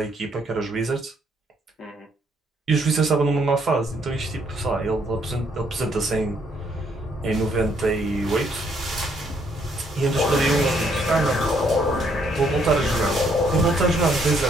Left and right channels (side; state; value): both; normal; correlation 0.69